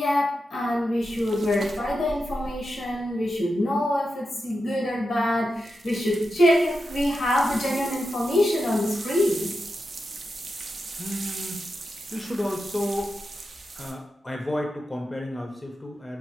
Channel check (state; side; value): normal; both; correlation 0.89